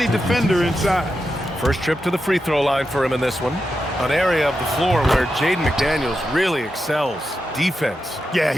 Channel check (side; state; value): both; normal; correlation 0.88